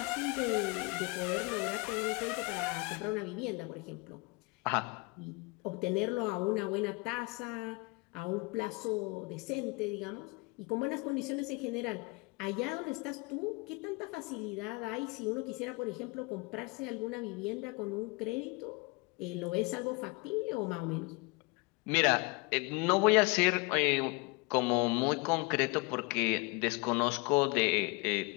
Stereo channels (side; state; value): right; quieter; 27.7 dB